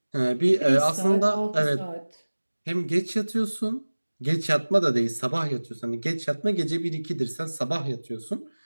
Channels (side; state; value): both; inverted; correlation -1.00